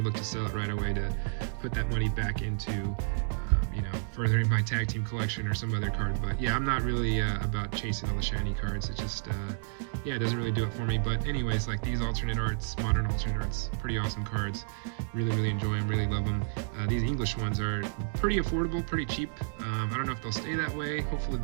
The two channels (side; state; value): left; silent; digital silence